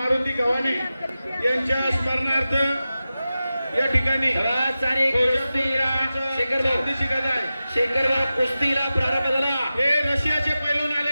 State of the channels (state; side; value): inverted; both; correlation -0.94